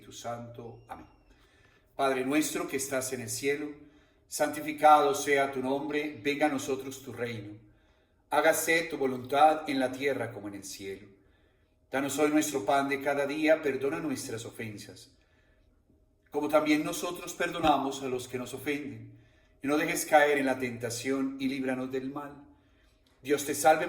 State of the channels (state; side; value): identical; both; correlation 1.00